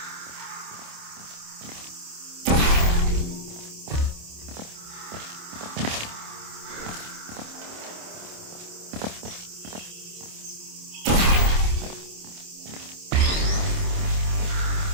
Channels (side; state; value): left; late; 27 ms